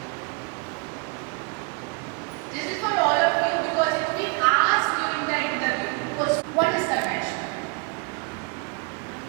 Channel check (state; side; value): quieter; left; 33.2 dB